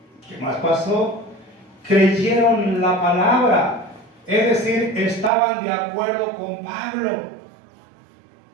¿Qué más pasó? Creyeron la palabra, es decir, estaban de acuerdo con Pablo.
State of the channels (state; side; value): drops out; left; at 5.3 s